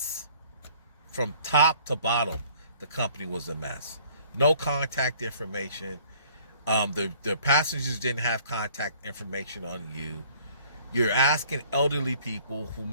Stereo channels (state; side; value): inverted; both; correlation -0.55